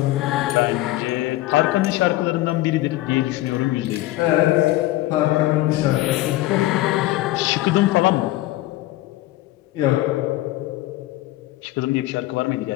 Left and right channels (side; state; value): right; quieter; 16.8 dB